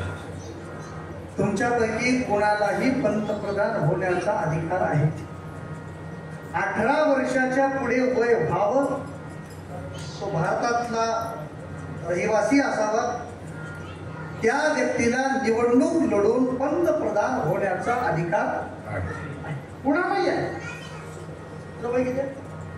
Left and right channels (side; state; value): both; identical; correlation 1.00